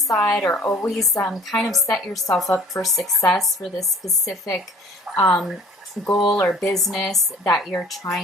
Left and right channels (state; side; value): normal; both; correlation 0.48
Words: or always kind of set yourself up for success for this specific goal or business that you're